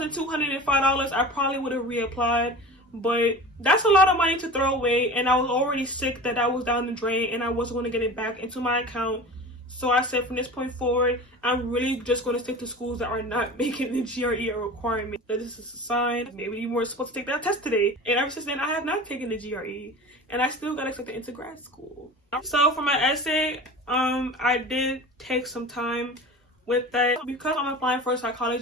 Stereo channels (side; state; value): both; normal; correlation 0.35